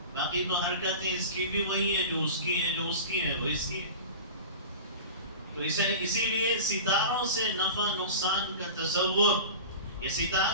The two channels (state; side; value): inverted; both; correlation -0.33